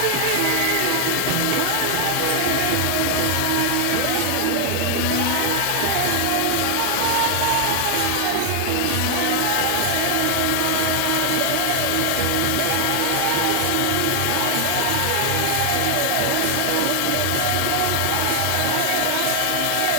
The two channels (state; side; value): different; both; correlation 0.00